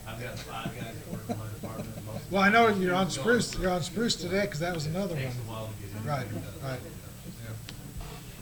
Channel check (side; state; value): both; identical; correlation 1.00